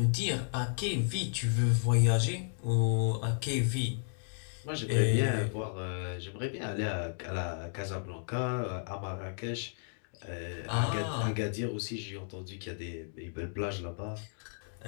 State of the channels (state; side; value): silent; right; digital silence